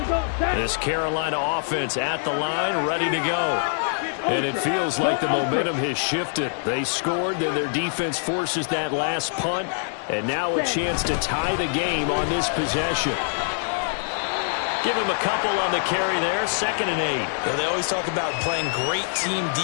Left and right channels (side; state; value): right; silent; digital silence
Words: go. This Carolina offense at the line, ready to go. And it feels like the momentum has shifted. They scored, then their defense forces that last punt, and now a chance to tie the game on this possession. Give him a couple on the carry there, 2nd and 8. Yeah, they always talk about playing great team